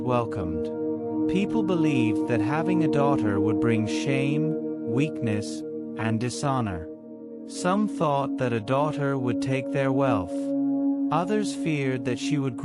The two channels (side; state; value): both; identical; correlation 1.00